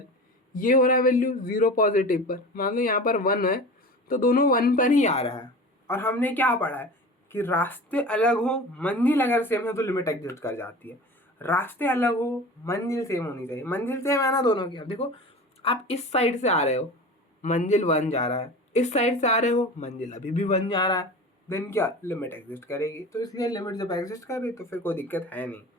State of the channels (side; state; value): both; normal; correlation 0.35